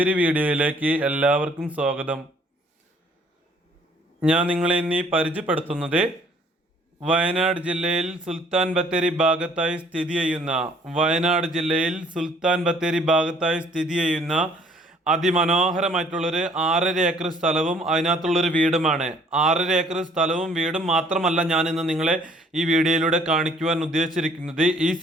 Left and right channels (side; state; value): both; normal; correlation 0.59